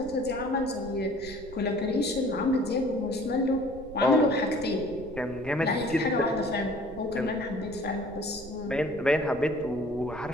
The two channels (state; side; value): noise; right; rumble, 16 dB below the sound